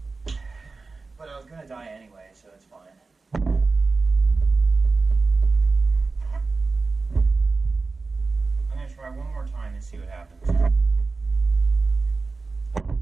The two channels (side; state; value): left; quieter; 3.9 dB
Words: But I was gonna die anyway, so it's fine. I'm gonna try one more time and see what happens.